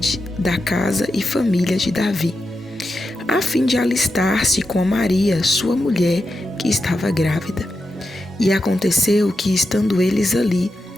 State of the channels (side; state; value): both; normal; correlation 0.88